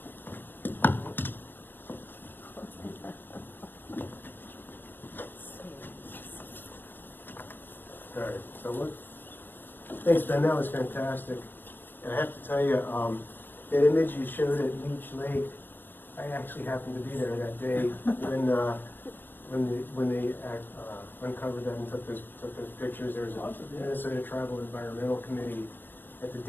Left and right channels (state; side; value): late; right; 0.096 ms